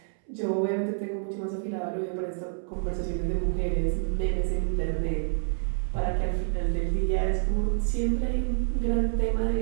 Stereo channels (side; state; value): left; silent; 59 dB below the other